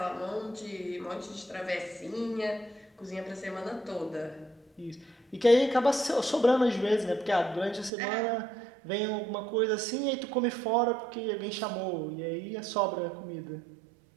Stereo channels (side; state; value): left; drops out; at 7.9 s